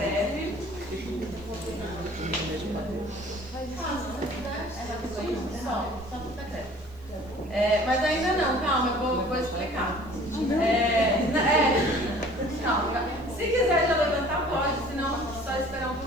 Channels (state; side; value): noise; right; hiss, 29 dB below the sound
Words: Mas ainda não, calma, eu vou explicar. Calma. Se quiser já levantar, pode, senão só esperar um